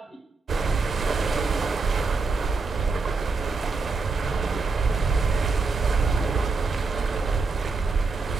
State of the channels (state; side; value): quieter; left; 4.1 dB